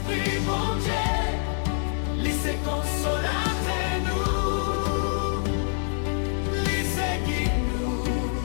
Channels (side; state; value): right; silent; digital silence